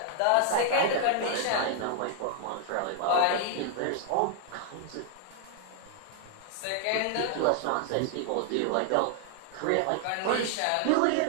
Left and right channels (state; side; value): different; both; correlation 0.00